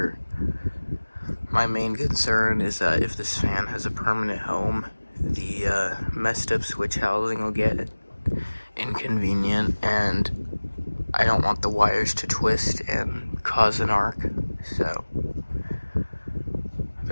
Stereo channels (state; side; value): inverted; both; correlation -1.00